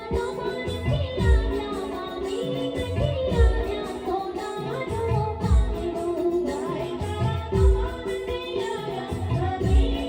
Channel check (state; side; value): identical; both; correlation 1.00